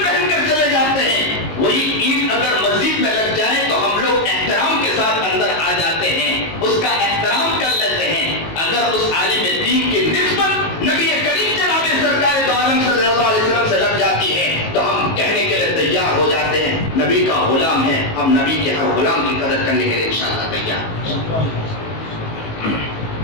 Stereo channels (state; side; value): late; right; 19 ms